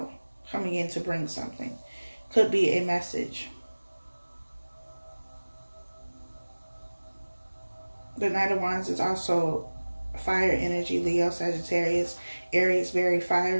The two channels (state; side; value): inverted; both; correlation -1.00